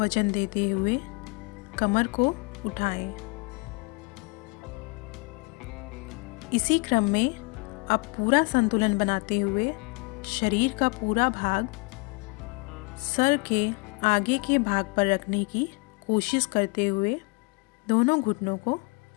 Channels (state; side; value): quieter; right; 31.3 dB